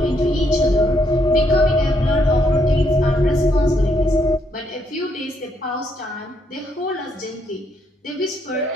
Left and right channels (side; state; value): both; normal; correlation 0.74